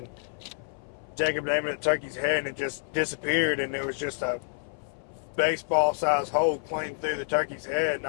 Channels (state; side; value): silent; right; 58 dB below the other